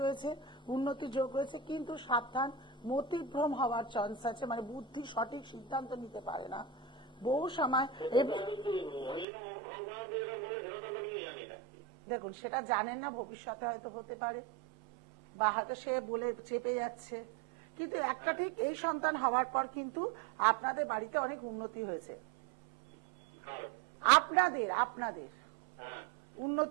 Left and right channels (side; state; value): left; drops out; at 9.2 s